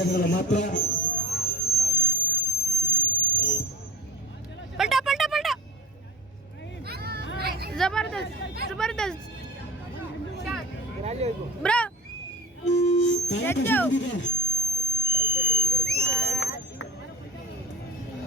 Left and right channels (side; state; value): both; normal; correlation 0.38